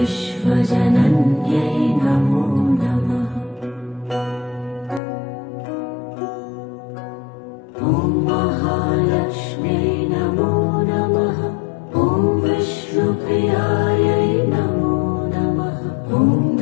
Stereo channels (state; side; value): drops out; right; at 5.0 s